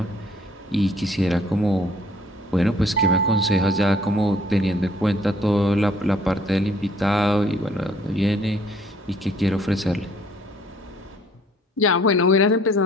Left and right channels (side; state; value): both; normal; correlation 0.60